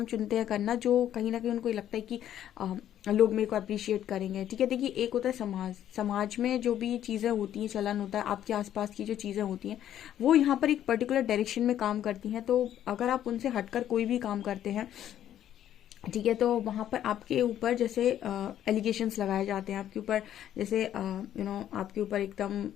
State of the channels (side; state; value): right; quieter; 11.1 dB